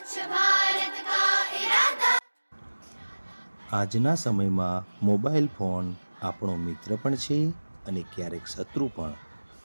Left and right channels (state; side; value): inverted; both; correlation -1.00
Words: भारत का इरादा। આજના સમયમાં મોબાઈલ ફોન આપણો મિત્ર પણ છે અને ક્યારેક શત્રુ પણ.